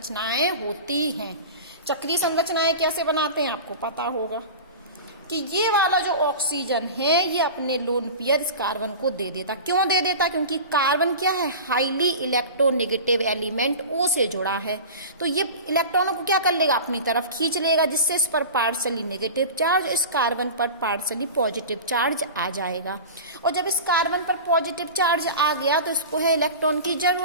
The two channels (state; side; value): inverted; both; correlation -0.33